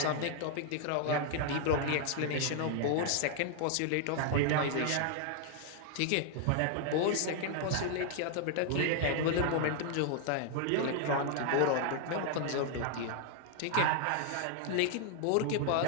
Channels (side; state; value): both; different; correlation 0.00